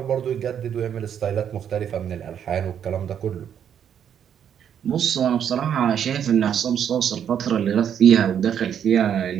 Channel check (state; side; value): quieter; left; 8.8 dB